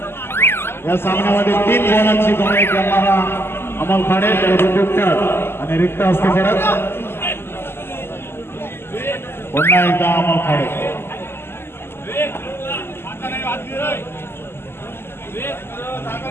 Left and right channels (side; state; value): right; late; 0.12 ms